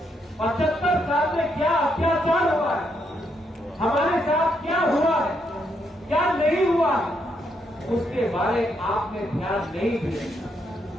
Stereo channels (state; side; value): normal; both; correlation 0.77